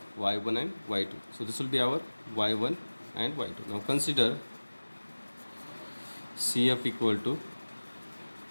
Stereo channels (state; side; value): inverted; both; correlation -1.00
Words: y1 and y2. So this will be our y1 and y2. Now consider CF equal to